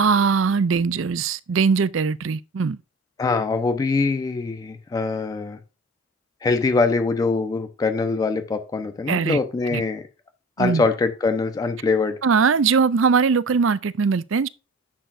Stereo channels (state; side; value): normal; both; correlation 0.41